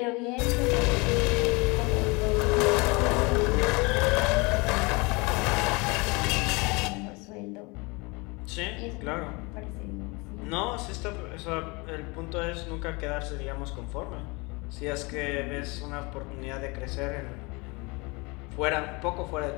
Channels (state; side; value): quieter; right; 27.1 dB